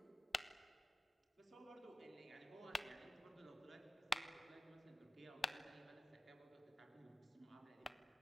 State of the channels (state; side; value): normal; both; correlation 0.90